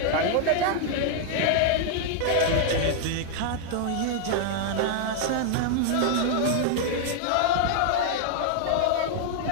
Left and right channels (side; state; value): both; different; correlation 0.00